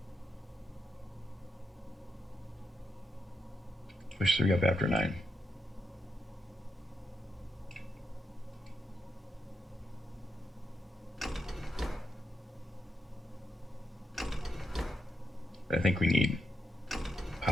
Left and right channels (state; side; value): normal; both; correlation 0.84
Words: Push 3 up after 9. I think we need